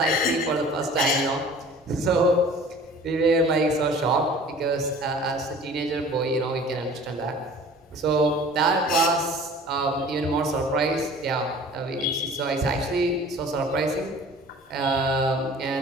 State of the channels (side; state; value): both; normal; correlation 0.46